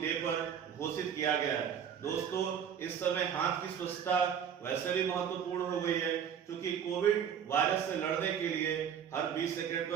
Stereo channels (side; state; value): left; quieter; 8.2 dB